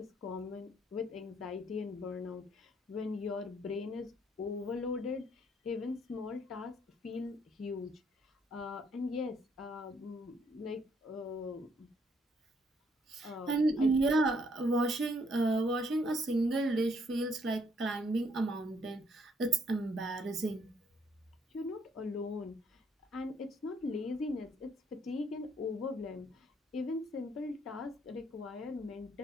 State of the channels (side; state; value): both; normal; correlation 0.68